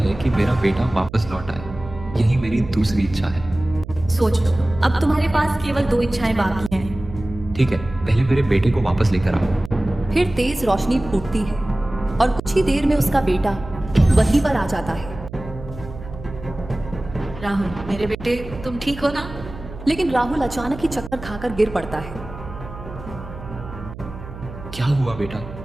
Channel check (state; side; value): noise; right; hum, 13 dB below the sound